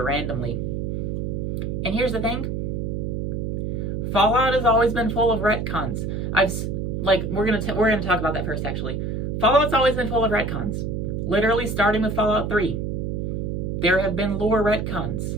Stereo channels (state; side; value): noise; right; hum, 2 dB below the sound